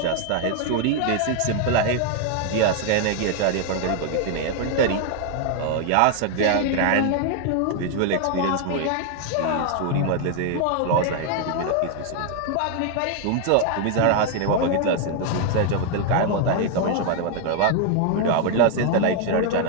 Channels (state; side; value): different; both; correlation 0.00